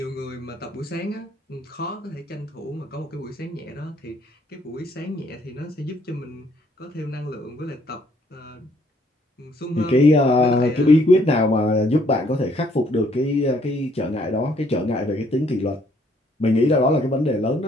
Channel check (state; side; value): normal; both; correlation 0.65